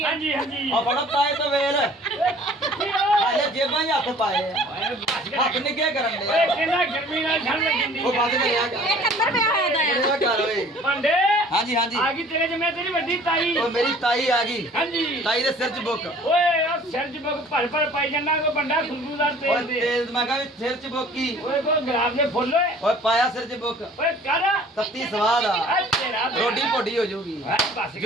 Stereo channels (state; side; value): normal; both; correlation 0.51